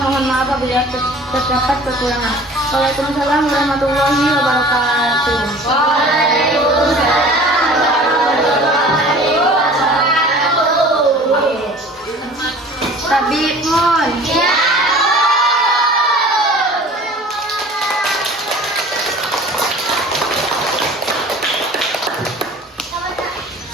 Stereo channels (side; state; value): both; normal; correlation 0.45